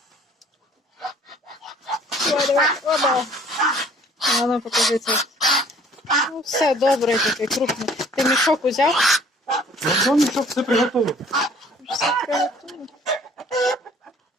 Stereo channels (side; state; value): both; normal; correlation 0.55